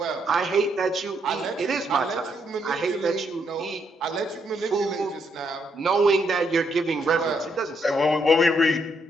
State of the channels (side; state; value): both; normal; correlation 0.75